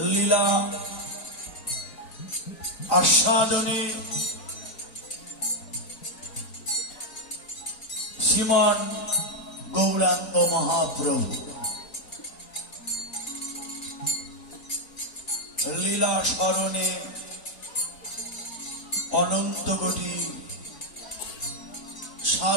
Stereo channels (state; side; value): late; right; 3.9 ms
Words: লীলা আস্বাদনে শ্রীমান গৌরাঙ্গ মহাপ্রভু লীলা স্মরণে অনন্ত কোটি